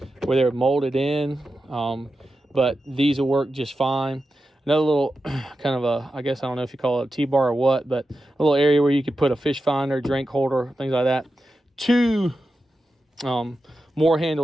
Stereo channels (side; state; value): both; normal; correlation 0.91